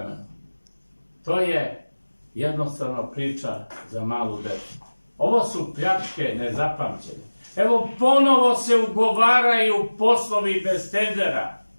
To je jednostavno priča za malu decu. Ovo su pljačke nezapamćene. Evo ponovo se ugovaraju poslovi bez tendera.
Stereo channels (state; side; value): inverted; both; correlation -1.00